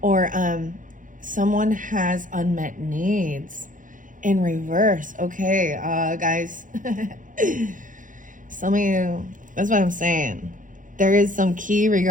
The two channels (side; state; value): left; late; 0.38 ms